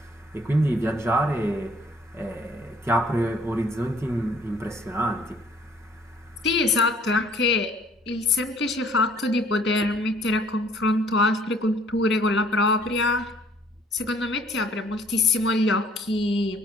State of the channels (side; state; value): both; normal; correlation 0.58